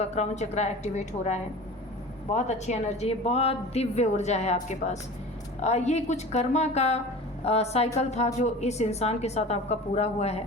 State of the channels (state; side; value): normal; both; correlation 0.37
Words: क्राउन चक्रा एक्टिवेट हो रहा है। बहुत अच्छी एनर्जी है, बहुत दिव्य ऊर्जा है आपके पास। ये कुछ कर्मा का साइकिल था जो इस इंसान के साथ आपका पूरा हुआ है।